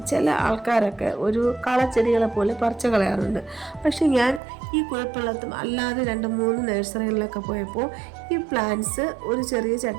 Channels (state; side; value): drops out; left; at 4.4 s